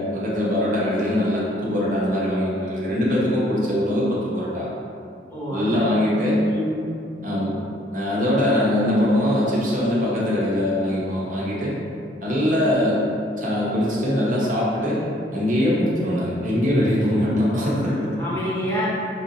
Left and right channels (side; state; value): both; normal; correlation 0.62